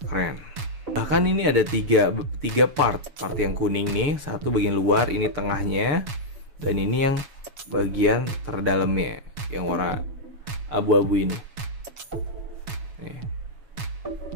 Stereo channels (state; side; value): late; left; 7.1 ms